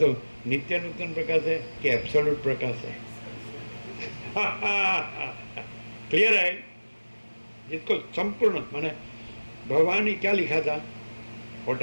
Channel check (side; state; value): both; inverted; correlation -1.00